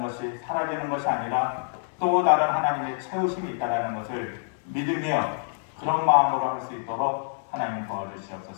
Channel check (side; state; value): right; silent; digital silence